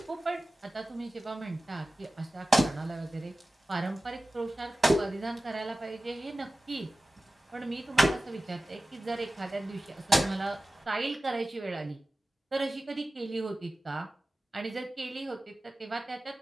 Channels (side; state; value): both; normal; correlation 0.96